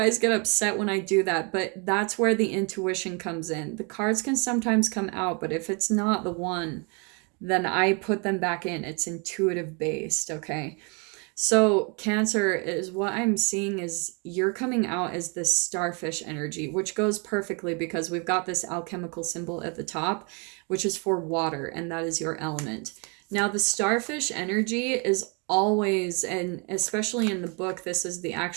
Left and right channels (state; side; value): quieter; left; 33.9 dB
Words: get upset when I do that, but that's where the intuition comes in. The cards can sometimes come out, but if it's not the one, then I put them back in. It's intuitive based, okay? So Cancer, is what I'm seeing is you're coming out as this starfish energy, which goes perfectly because we've got this alchemical symbol at the top, which is for water, and that is your element. Now, the starfish energy is always, and especially in the book, this is the